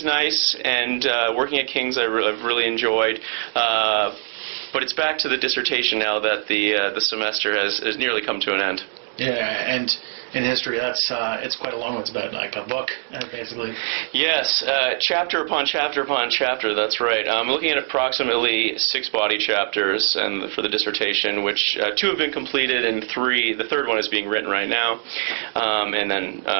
nice, and working at King's I've really enjoyed. But it's back to the dissertation now that the semester has nearly come to an end. Yeah, and in history, it's quite a long one. It's about like a book, basically. Yes, chapter upon chapter upon chapter. That's right. I'm looking at approximately 6 body chapters, and for the dissertation, which 2 have been completed, and the third one is being written right now. And then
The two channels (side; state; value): left; silent; digital silence